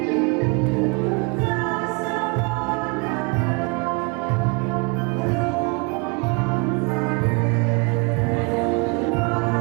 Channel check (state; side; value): quieter; left; 31.1 dB